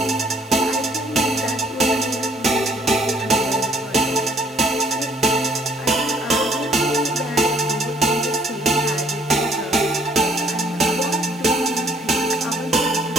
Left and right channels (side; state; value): both; normal; correlation 0.62